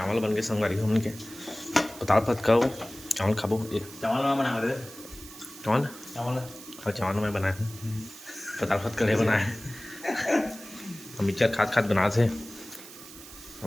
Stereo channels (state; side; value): noise; right; hiss, 16 dB below the sound